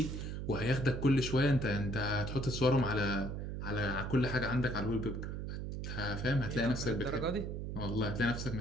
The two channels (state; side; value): noise; right; hum, 5 dB below the sound